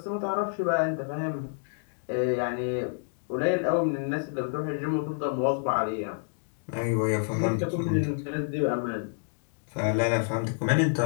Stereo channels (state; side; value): silent; right; digital silence